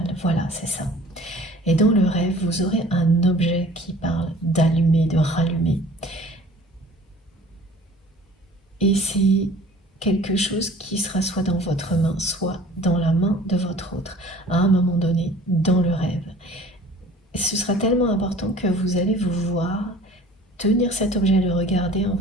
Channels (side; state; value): both; normal; correlation 0.48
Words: Voilà, c'est ça. Et dans le rêve, vous aurez un objet qui parle d'allumer, de rallumer. Et c'est quelque chose qui sera soit dans votre main, soit dans la main de votre autre, à un moment donné, dans le rêve. Et ce sera tellement important que vous allez vous voir tenir cet objet, le regarder en